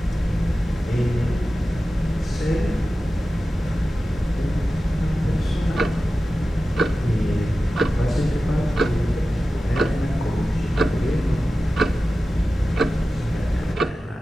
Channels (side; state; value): both; normal; correlation 0.94